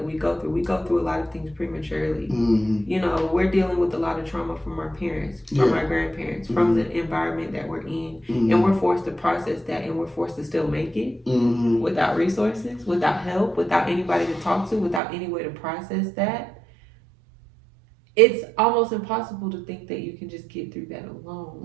we go through. We go through a lot of things prematurely. Mm-hmm. You know, we're dealing with a lot of trauma from our parents, from our grandparents, from the environment that we're in. Mm-hmm. And we're forced to process that, and we're forced to still make it without resources, without help, without anybody to talk to, without any way to process that. It's almost impossible to think that you can just get through that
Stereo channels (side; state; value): left; drops out; at 15.0 s